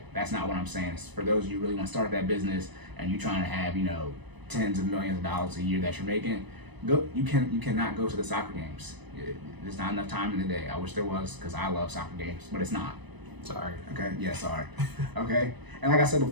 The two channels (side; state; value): left; late; 1.0 ms